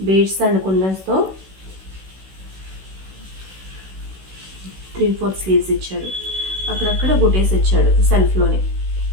బీడ్స్ అండ్ కుందన్స్తో 3/4 స్లీవ్స్ ఇచ్చాడు. అక్కడక్కడ బుటీస్ ఇచ్చాడు సెల్ఫ్లోనే.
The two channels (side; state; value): left; late; 16 ms